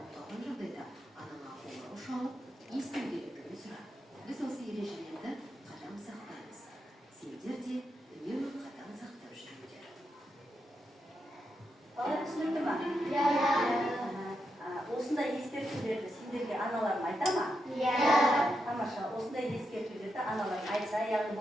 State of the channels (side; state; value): both; normal; correlation 0.85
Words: қалған жағдайда анаңа қоңырау шалып, есту керектігін сұра. Біз осы ережелерді қатаң сақтаймыз. Сендер де үнемі қатаң сақтап жүріңдер. Балалар түсінікті ма? Осындай ескертулерді сендерге аналарың айта ма? Тамаша, осындай ескертулерді аналарың айтса, яғни